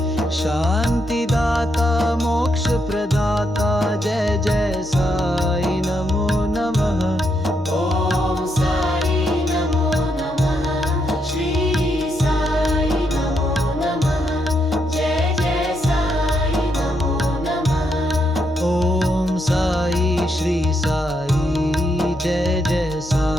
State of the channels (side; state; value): both; normal; correlation 0.79